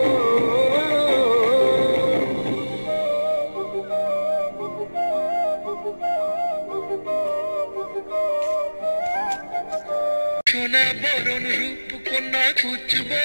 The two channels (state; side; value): inverted; both; correlation -1.00